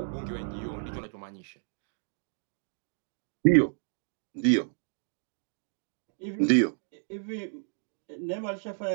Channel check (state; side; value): silent; left; digital silence